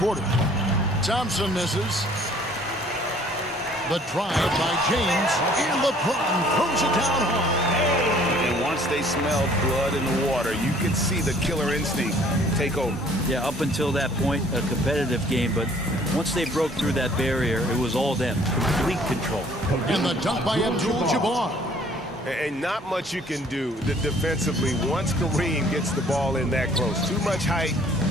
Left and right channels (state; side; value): normal; both; correlation 0.56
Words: Thompson misses. The drive by James. And LeBron throws it down hard. And once they smelled blood in the water, you could see the killer instinct take over. Yeah, up until that point, a competitive game, but once they broke through that barrier, it was all them. Complete control. And the dunk by Abdul-Jabbar. And not much you can do defensively once Kareem gets the ball in that close. Too much height,